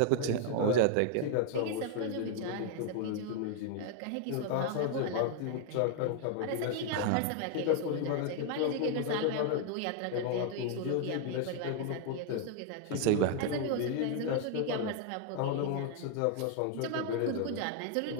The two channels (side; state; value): both; different; correlation 0.00